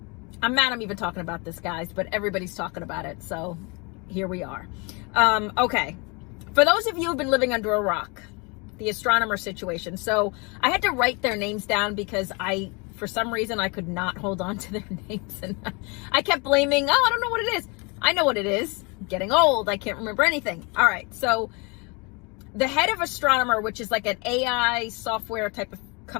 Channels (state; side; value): quieter; right; 29.9 dB